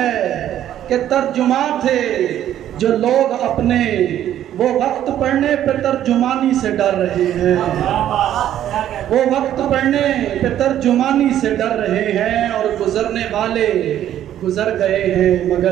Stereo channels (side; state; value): left; quieter; 11.4 dB